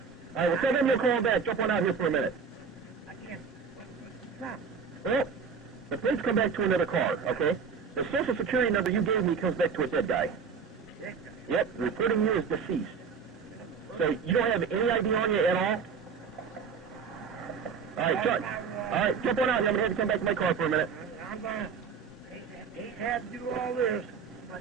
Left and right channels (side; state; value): left; quieter; 6.0 dB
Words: All right, well, tell them you'll call back. Jump on out here for a minute. I can't. Stop. Well, the plates come back to another car, okay? The Social Security number you gave me comes back to a dead guy. Dead guy. Yep, reporting you as deceased. So you don't have any ID on you at all? All right, jump on out here. I'm going to have to come back to my car for a minute. I'm going to. Hate to have to do all this, but